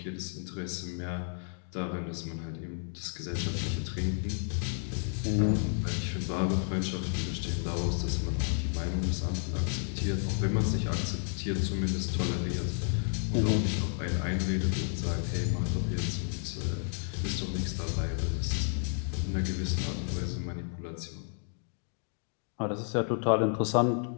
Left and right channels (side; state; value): right; silent; digital silence